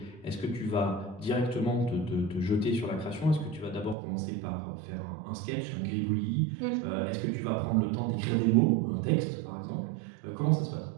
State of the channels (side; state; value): left; drops out; at 4.0 s